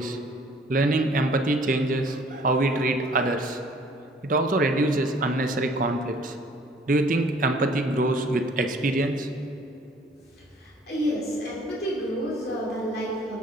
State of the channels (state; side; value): normal; both; correlation 0.56